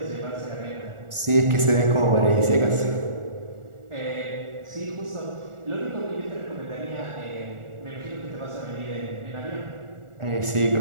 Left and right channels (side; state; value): left; late; 1.4 ms